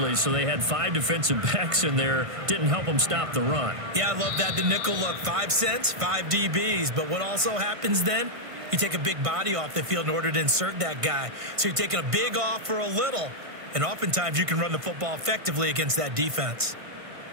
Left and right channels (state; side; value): late; left; 1.5 ms